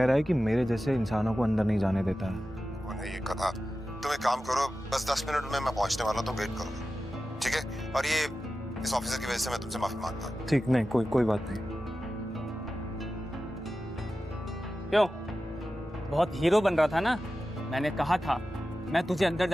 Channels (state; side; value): normal; both; correlation 0.93